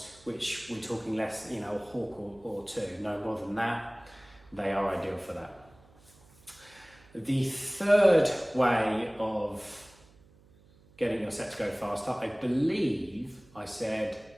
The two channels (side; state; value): right; noise; hum, 27 dB below the sound